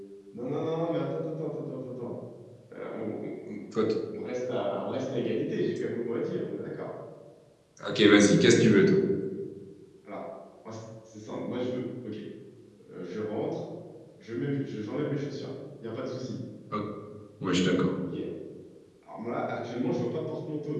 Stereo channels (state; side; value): identical; both; correlation 1.00